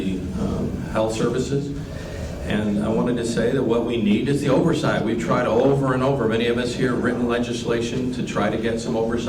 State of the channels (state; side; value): identical; both; correlation 1.00